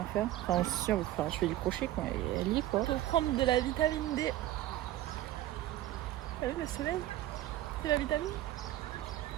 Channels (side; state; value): left; quieter; 14.3 dB